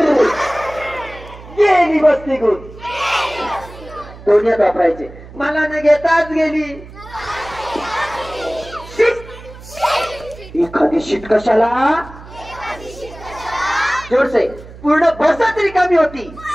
गेली बसती गुण. दोन्ही वापरायचे. मला न घेताच गेली. एखादी शीट कशाला? जोरसे. पूर्ण बसच रिकामी होती.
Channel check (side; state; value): right; noise; hum, 17 dB below the sound